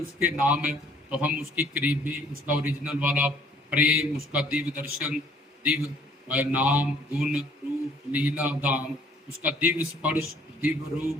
नाम है। तो हम उसकी करीबी, उसका ओरिजिनल वाला प्रेम, उसका दिव्य दर्शन, दिव्य नाम, गुण, रूप, लीला, धाम, उसका दिव्य स्पर्श, दिव्य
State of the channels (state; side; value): normal; both; correlation 0.59